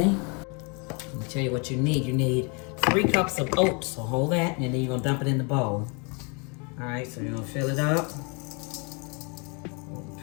Let me tell you what you need. You need 3 cups of oats, so hold that, and then you're going to dump it in the bowl. Alright, so you're going to fill it up.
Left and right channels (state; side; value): quieter; right; 33.5 dB